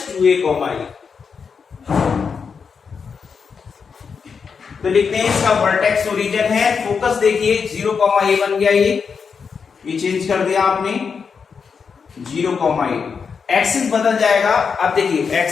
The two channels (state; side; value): quieter; right; 5.9 dB